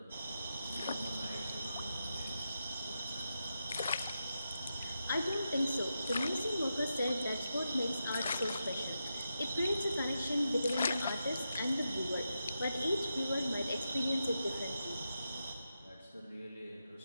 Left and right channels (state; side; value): inverted; both; correlation -0.87